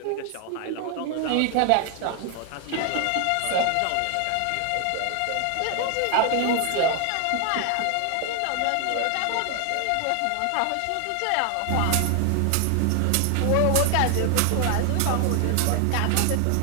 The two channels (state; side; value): different; both; correlation 0.00